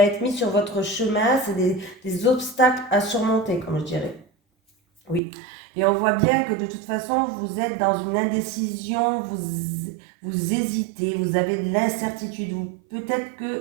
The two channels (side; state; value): left; drops out; at 5.2 s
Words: être mis sur votre chemin. C'est des obstacles à surmonter, comme je dirais. Oui. Et on voit bien que de toute façon, vous êtes dans une indécision, vous hésitez, vous avez de l'incertitude. Peut-être